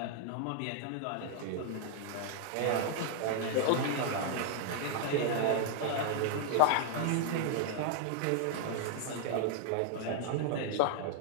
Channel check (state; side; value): different; both; correlation 0.00